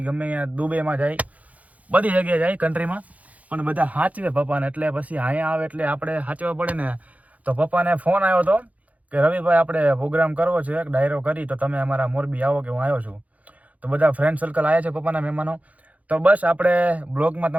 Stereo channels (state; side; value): late; left; 0.071 ms